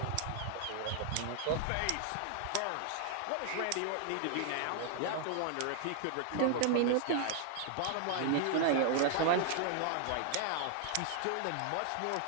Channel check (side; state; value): both; different; correlation 0.00